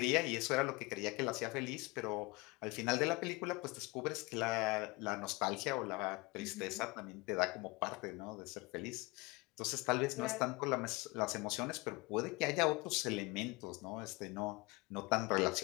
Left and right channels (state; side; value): quieter; right; 25.4 dB